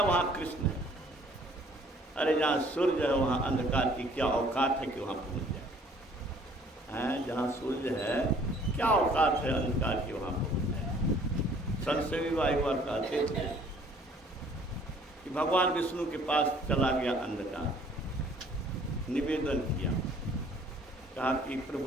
वहाँ कृष्ण है। अरे जहाँ सूर्य है वहाँ अंधकार की क्या औकात है कि वहाँ पहुँच जाए। जहाँ सूर्य है क्या औकात है अंधकार की वहाँ पहुँच जाए। संत भी एक बार कहते थे कि भगवान विष्णु के पास चला गया अंधकार, निवेदन किया, कहा कि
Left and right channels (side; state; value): both; normal; correlation 0.57